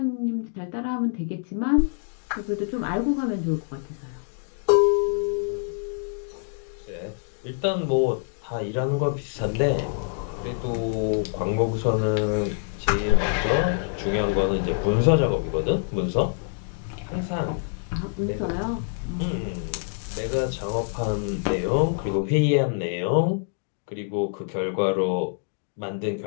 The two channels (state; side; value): silent; right; digital silence